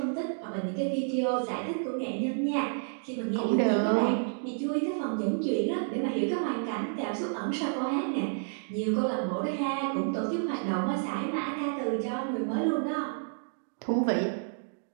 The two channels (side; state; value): left; silent; digital silence